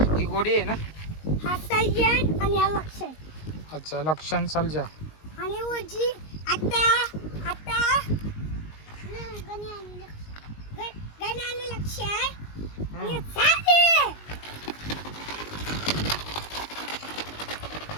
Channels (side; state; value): right; late; 19 ms